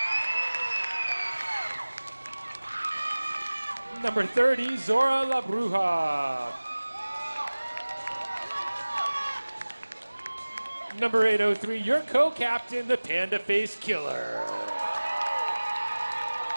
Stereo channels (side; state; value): both; inverted; correlation -1.00